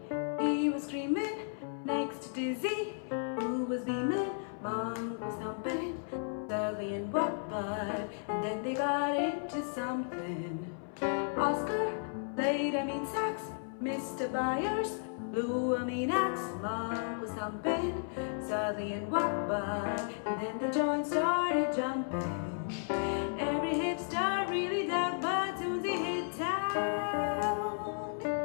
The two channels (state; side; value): silent; right; 55 dB below the other